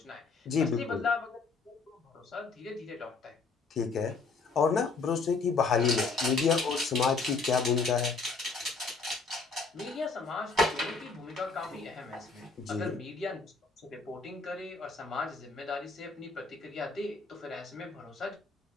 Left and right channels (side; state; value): right; quieter; 4.4 dB